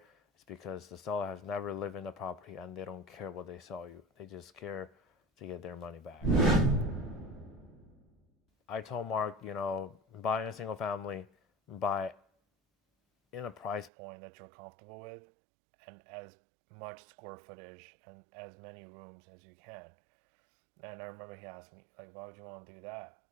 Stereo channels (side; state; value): left; drops out; at 13.9 s